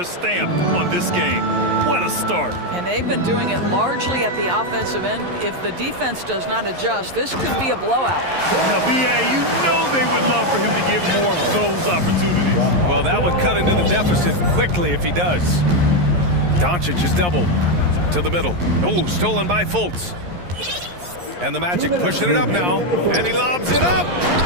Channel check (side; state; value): left; late; 11 ms